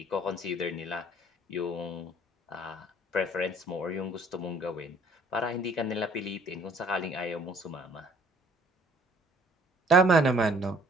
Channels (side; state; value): both; normal; correlation 0.57